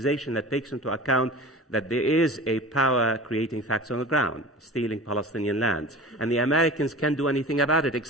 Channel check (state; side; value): normal; both; correlation 0.37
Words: that takes into account that there is a power creating facts on the ground, stealing Palestinian lands, and the Americans can't do anything about it